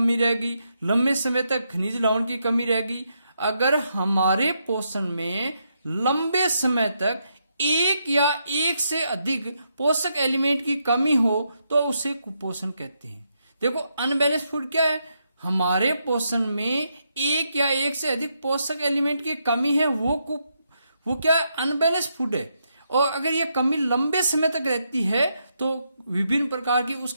रहेगी, लंबे समय तक खनिज लवण की कमी रहेगी। अगर हमारे पोषण में लंबे समय तक एक या एक से अधिक पोषक एलिमेंट की कमी हो तो उसे कुपोषण कहते हैं। देखो, अनबैलेंस फूड क्या है? हमारे पोषण में एक या एक से अधिक पोषक एलिमेंट की कमी है, वो क्या है? अनबैलेंस फूड है। और अगर ये कमी लंबे समय तक रहती है तो विभिन्न प्रकार की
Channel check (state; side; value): inverted; both; correlation -0.80